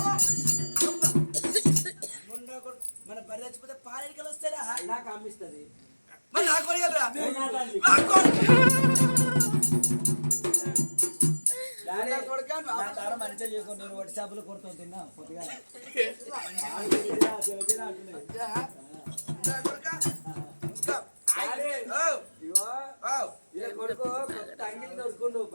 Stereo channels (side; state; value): both; inverted; correlation -1.00